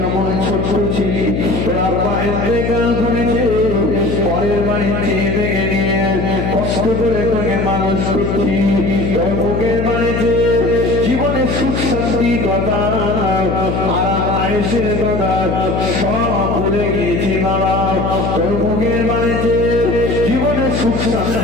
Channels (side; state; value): left; noise; hum, 1 dB below the sound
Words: ছোট্ট ছিলি তোর আব্বা ইন্তেকাল করেছে পরের বাড়িতে ভেঙে নিয়ে কষ্ট করে তোকে মানুষ করছি তোর মুখের বাড়িতে জীবনে সুখ শান্তি কথা আরাম আয়েশের কথা সব ভুলে গিয়েছি বাবা তোর মুখের বাড়িতে জীবনে সুখ